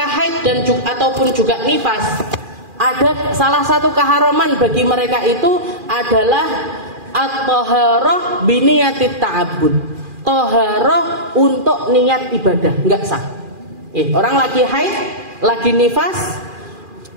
haid dan ataupun juga nifas, ada salah satu keharaman bagi mereka itu adalah at-thaharah biniyatit ta'abbud. Thaharah untuk niat ibadah, enggak sah. Orang lagi haid, lagi nifas,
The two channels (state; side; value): late; left; 2.4 ms